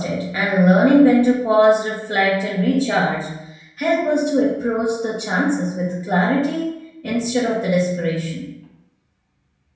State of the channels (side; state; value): both; identical; correlation 1.00